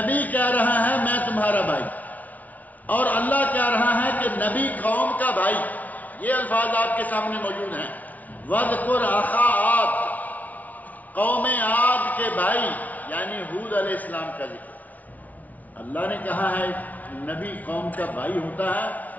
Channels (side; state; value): right; late; 0.074 ms